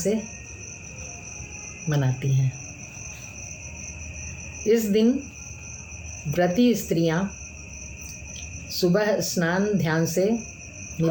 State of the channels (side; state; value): both; identical; correlation 1.00